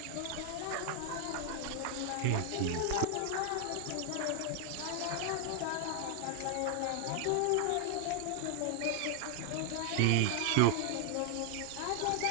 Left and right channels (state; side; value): different; both; correlation 0.00